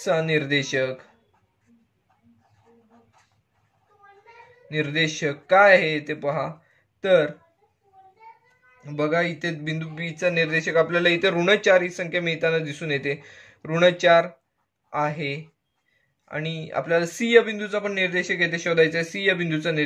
निर्देशक काय आहे ते पहा. तर बघा इथे बिंदू पी चा निर्देशक आपल्याला इथे ऋण 4 ही संख्या मिळताना दिसून येते. ऋण 4 आहे आणि आपल्याला सी या बिंदूचा पण निर्देशक येथे शोधायचा आहे. सी या बिंदूचा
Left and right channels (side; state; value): both; identical; correlation 1.00